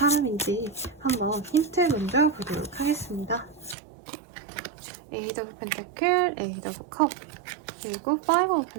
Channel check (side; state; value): left; drops out; at 3.8 s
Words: 한번 힌트 먼저 보도록 하겠습니다. 에이드 오브 펜타클, 에이드 오브 컵, 그리고 파이브 오브